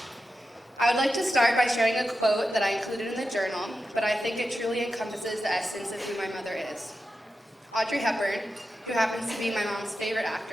I would like to start by sharing a quote that I included in the journal, but I think it truly encompasses the essence of who my mother is. Audrey Hepburn, who happens to be my mom's favorite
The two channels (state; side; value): normal; both; correlation 0.90